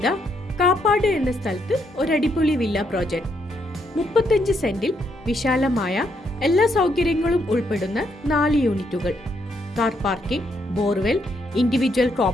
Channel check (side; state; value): both; normal; correlation 0.75